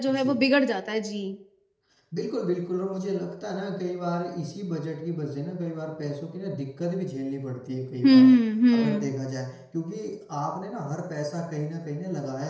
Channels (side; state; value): both; identical; correlation 1.00